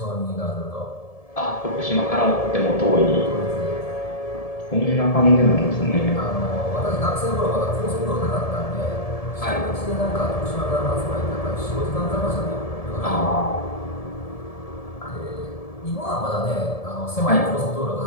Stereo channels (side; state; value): right; late; 1.7 ms